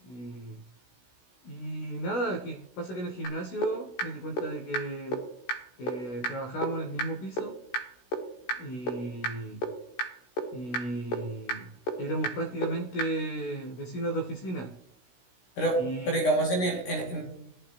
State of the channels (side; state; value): right; late; 16 ms